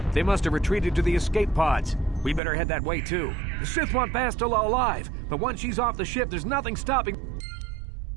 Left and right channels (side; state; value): left; drops out; at 2.4 s